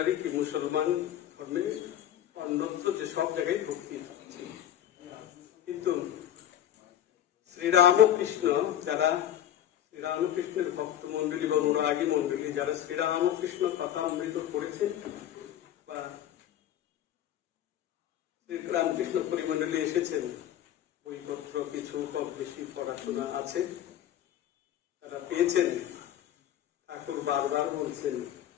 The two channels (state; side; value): quieter; right; 11.3 dB